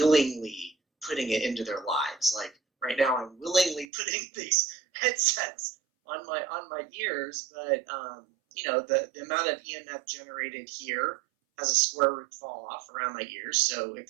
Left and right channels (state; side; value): drops out; left; at 3.9 s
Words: putting it into their lives. Like right now, I'm willingly putting these headsets on my ears, but the amount of EMF generated here has a square root fall off around my ears, so